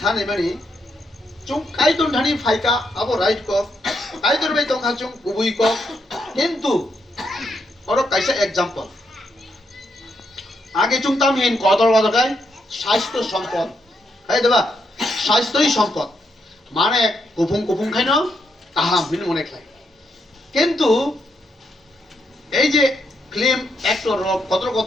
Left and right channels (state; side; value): normal; both; correlation 0.78